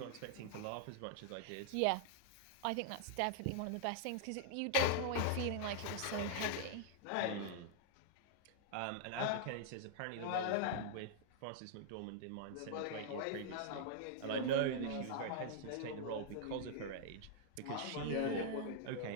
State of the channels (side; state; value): both; different; correlation -0.01